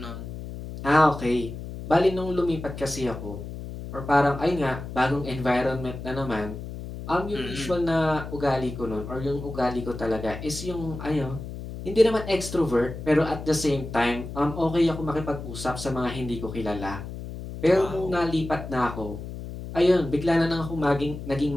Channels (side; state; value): left; noise; hum, 9 dB below the sound